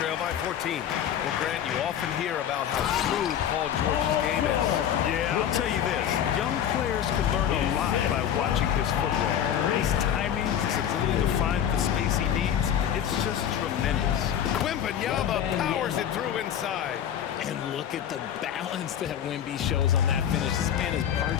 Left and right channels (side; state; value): right; quieter; 9.6 dB